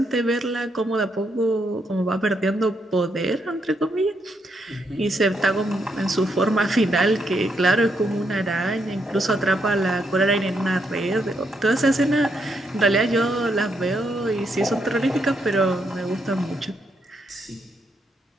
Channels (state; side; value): normal; both; correlation 0.78